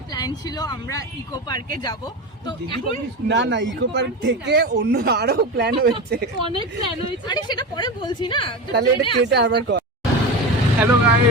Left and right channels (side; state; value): both; normal; correlation 0.23